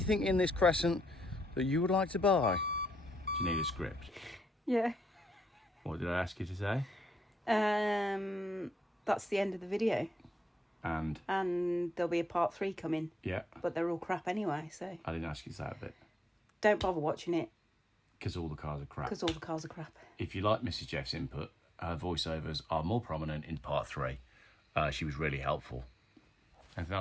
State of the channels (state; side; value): normal; both; correlation 0.80